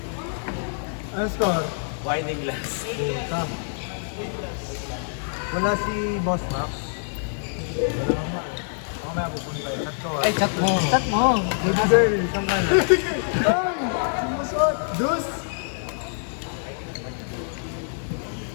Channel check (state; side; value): silent; right; digital silence